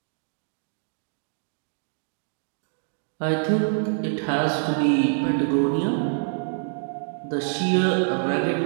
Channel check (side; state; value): left; silent; digital silence